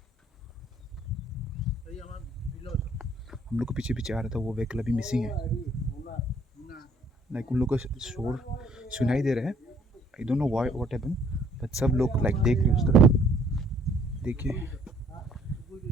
हम लोग को पीछे पीछे आ रहा था, वो व्हीकल अभी मिसिंग है। लाइक उन लोग का शोर सुनाई दे रहा है। I don't know why what happen, but सब लोग लाइक देख रहे उस तरफ। देखिए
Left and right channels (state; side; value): normal; both; correlation 0.61